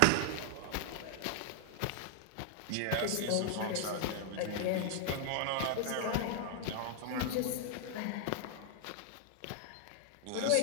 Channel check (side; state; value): both; different; correlation 0.00